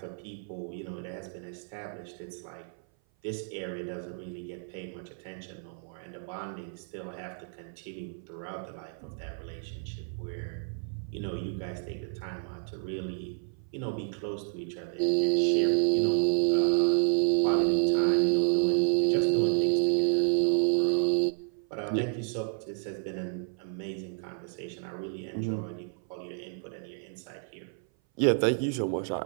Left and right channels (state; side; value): silent; left; 57 dB below the other